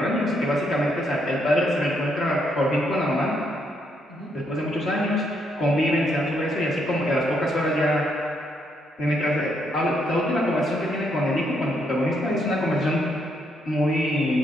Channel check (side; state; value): both; normal; correlation 0.75